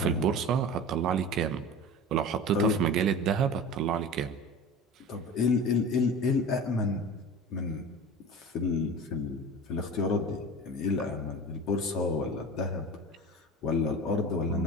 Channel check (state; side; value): normal; both; correlation 0.34